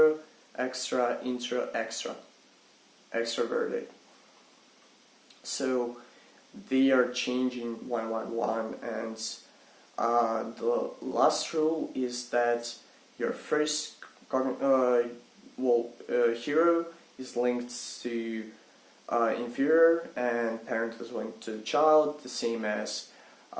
extra, intro, extra, extroverted. So they are changing one, and the last rule is that your first hero is linked to inferior, and parent is linked to the child, the same as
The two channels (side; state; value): both; identical; correlation 1.00